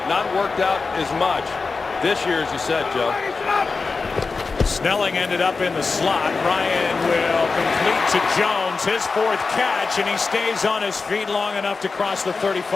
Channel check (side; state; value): right; quieter; 4.3 dB